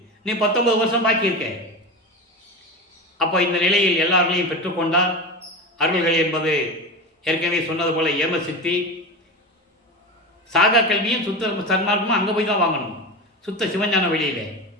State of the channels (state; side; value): normal; both; correlation 0.24